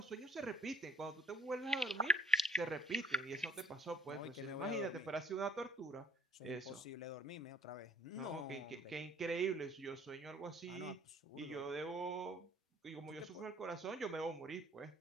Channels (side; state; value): both; normal; correlation 0.52